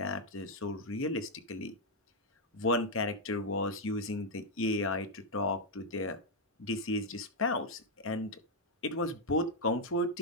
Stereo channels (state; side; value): normal; both; correlation -0.01